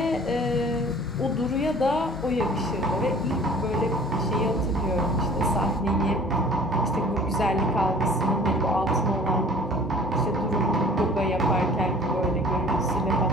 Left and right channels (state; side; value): normal; both; correlation 0.49